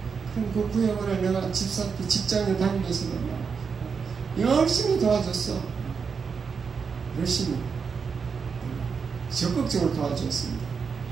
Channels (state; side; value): quieter; left; 5.8 dB